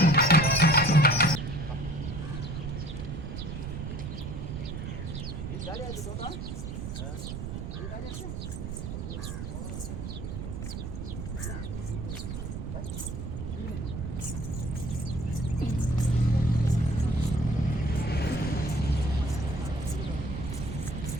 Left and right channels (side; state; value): right; noise; rumble, 6 dB below the sound